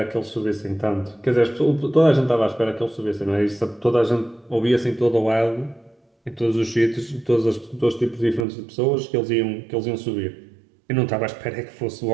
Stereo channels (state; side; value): drops out; left; at 8.5 s